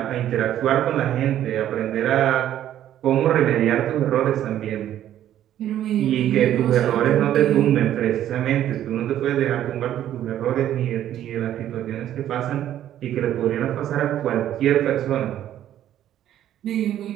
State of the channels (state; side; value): quieter; left; 11.7 dB